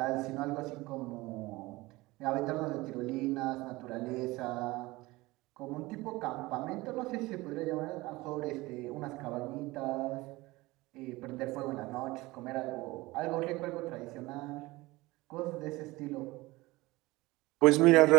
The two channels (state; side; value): quieter; left; 20.8 dB